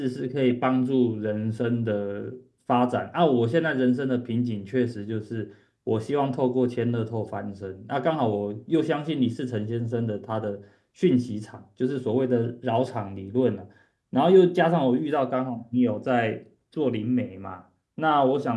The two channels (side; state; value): both; identical; correlation 1.00